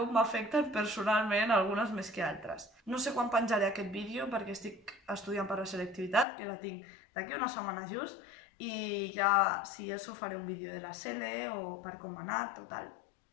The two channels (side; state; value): right; drops out; at 6.2 s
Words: m'afecten personalment, algunes més que altres. No sé quan penjaré aquest vídeo perquè estic estudiant per la selectivitat, que la tinc d'aquí una setmana just, i ja, si això, faré un vídeo de la SELE o per com m'ha anat o tal.